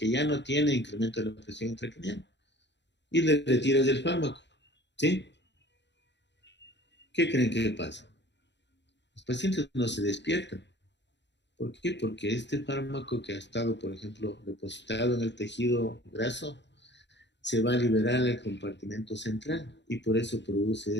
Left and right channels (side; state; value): right; late; 0.52 ms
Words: ya no tiene incremento de la presión intracraneal. Y le retiras el fármaco, ¿sí? ¿Qué creen que pasa? Los pacientes no se despiertan. ¿Por qué? Porque este fármaco que ha estado, por ejemplo, depositado en el tejido graso, se va a liberar al compartimento central y por eso produce